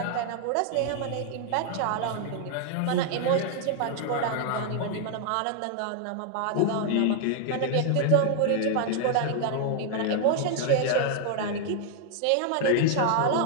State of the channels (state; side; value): different; both; correlation 0.00